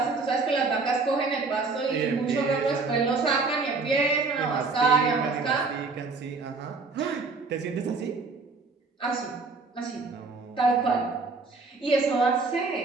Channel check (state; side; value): quieter; left; 4.0 dB